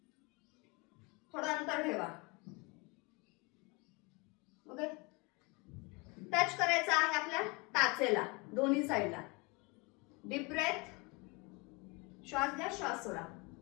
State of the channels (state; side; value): quieter; right; 27.1 dB